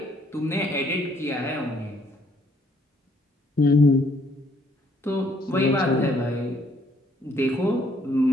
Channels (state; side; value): normal; both; correlation 0.67